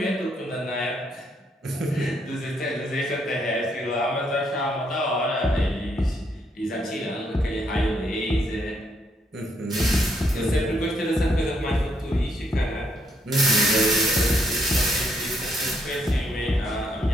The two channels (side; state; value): both; normal; correlation 0.74